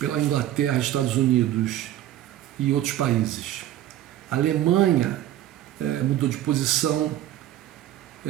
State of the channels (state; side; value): quieter; left; 12.9 dB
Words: Inglaterra, Estados Unidos e outros países. A Alemanha mudou de posição